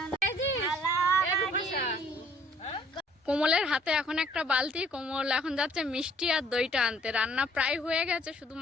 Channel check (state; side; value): normal; both; correlation 0.60